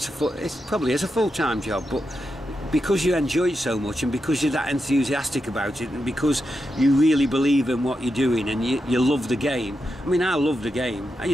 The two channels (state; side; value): normal; both; correlation 0.87